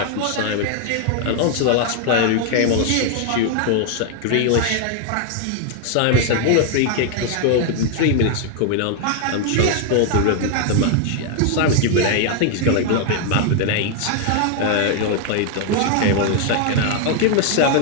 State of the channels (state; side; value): different; both; correlation 0.00